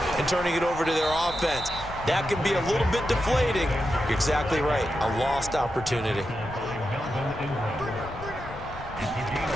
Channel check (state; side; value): noise; left; rumble, 13 dB below the sound